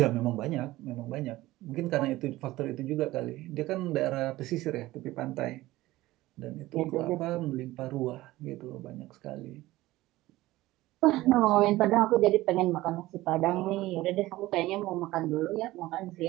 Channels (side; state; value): left; quieter; 17.5 dB